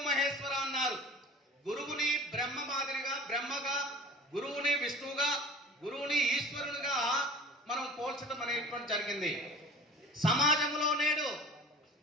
మహేశ్వర అన్నారు. గురువుని బ్రహ్మ మాదిరిగా బ్రహ్మగా, గురువుని విష్ణువుగా, గురువుని ఈశ్వరునిగా మనం పోల్చడం అనేటువంటి జరిగింది. సమాజంలో నేడు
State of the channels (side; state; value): both; normal; correlation 0.40